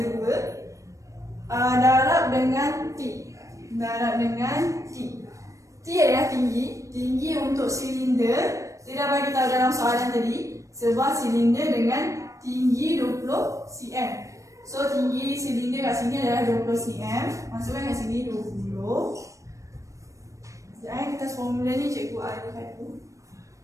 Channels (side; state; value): left; late; 0.15 ms